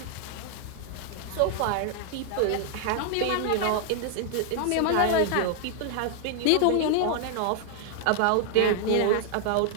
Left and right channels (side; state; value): both; different; correlation 0.00